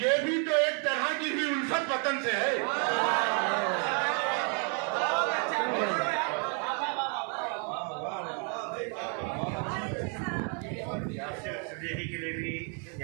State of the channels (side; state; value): left; quieter; 40.0 dB